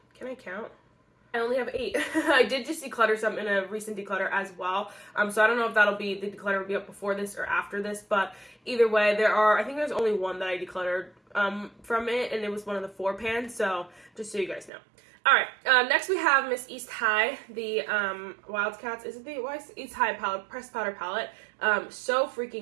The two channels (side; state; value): left; drops out; at 14.7 s